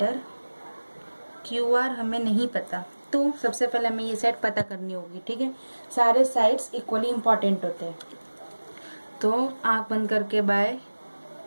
Q R हमें नहीं पता, तो सबसे पहले हमें ये साइड पता करनी होगी, ठीक है। सारे साइड्स इक्वली इम्पॉर्टेंट होते हैं। तो आंख बंद करके बाय,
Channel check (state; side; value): inverted; both; correlation -1.00